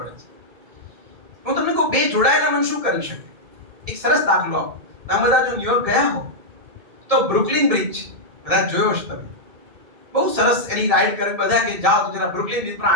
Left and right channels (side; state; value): left; late; 2.6 ms